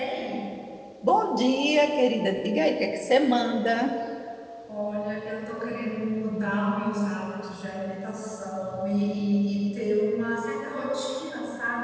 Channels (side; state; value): both; identical; correlation 1.00